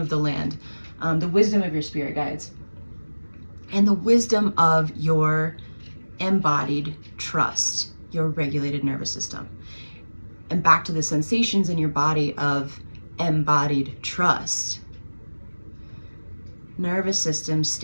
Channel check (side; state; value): both; inverted; correlation -1.00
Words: the land, the wisdom of your spirit guides, and the wisdom of your embodied trust, your regulated nervous system. And back to the sensations in your body of embodied trust. Nervous system